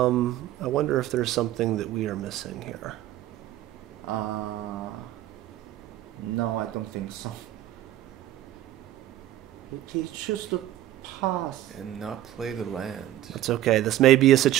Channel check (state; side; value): quieter; left; 13.6 dB